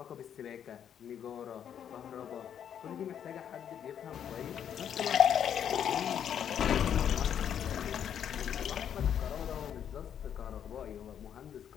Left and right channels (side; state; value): right; quieter; 9.0 dB